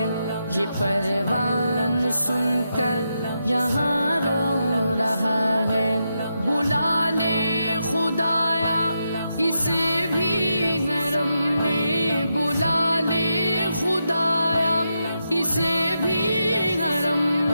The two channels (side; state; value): both; inverted; correlation -0.85